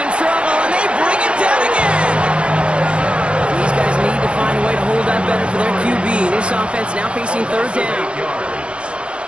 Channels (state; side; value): late; left; 0.058 ms